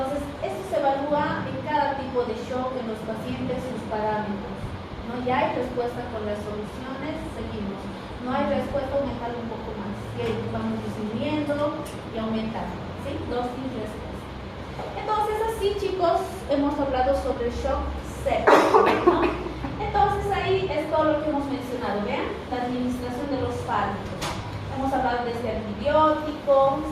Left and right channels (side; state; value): both; identical; correlation 1.00